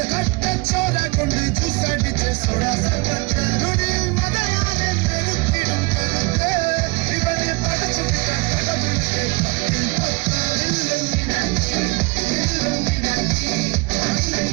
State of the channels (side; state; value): left; quieter; 26.6 dB